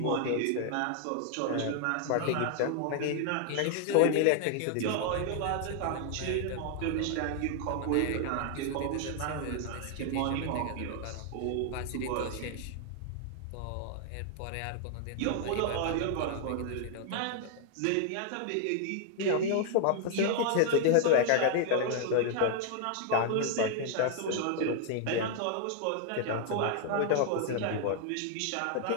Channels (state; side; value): different; both; correlation 0.00